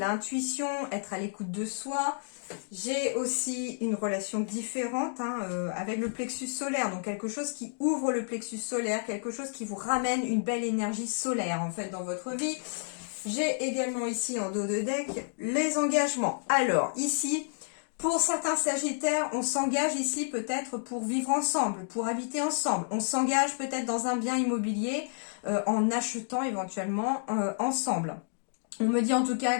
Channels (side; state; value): right; silent; digital silence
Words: être à l'écoute de soi. J'ai aussi une relation différente avec le plexus solaire, donc quelque chose qui ouvre le plexus solaire, quelque chose qui vous ramène une belle énergie solaire en fait dans votre vie. J'ai également ici en dos de deck les engagements. Alors ici, pour certains Sagittaires, on s'engage ici peut-être pour vivre ensemble, pour habiter ensemble. On s'engage peut-être dans un bien immobilier en achetant éventuellement ensemble. On me dit en tout cas